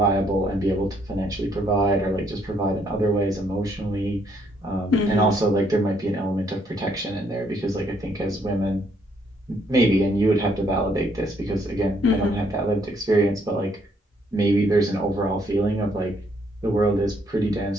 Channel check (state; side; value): normal; both; correlation 0.70